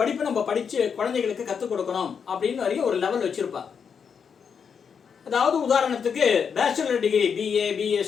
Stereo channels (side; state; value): right; quieter; 6.7 dB